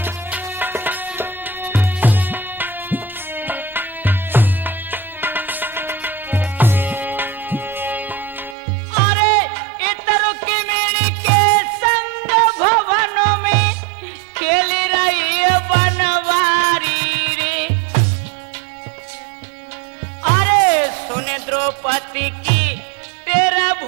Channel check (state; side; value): drops out; left; at 8.6 s